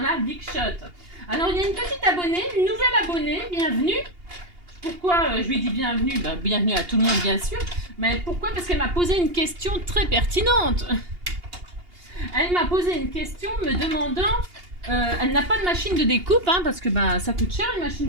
la Big Shot. Alors, il y a une petite abonnée, une nouvelle abonnée, bienvenue. Pourquoi je lui dis bienvenue? Bienvenue à tout le monde, bien sûr. Mais pourquoi? Parce qu'elle m'a posé une question très pertinente. Elle m'a posé une question me demandant... elle n'a pas de machine de découpe, hein, parce que ça coûte cher, une machine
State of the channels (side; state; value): left; late; 2.8 ms